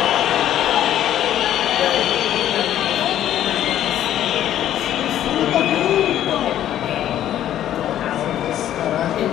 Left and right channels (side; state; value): right; quieter; 11.6 dB